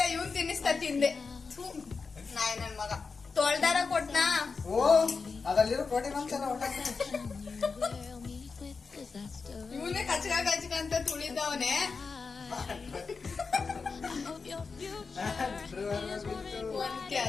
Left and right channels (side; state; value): right; quieter; 4.8 dB